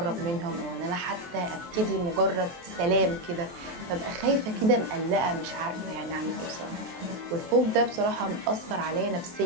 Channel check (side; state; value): left; late; 23 ms